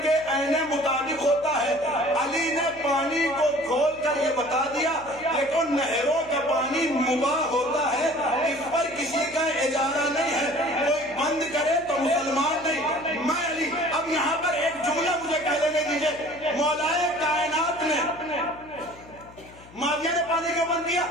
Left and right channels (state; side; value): noise; left; hum, 22 dB below the sound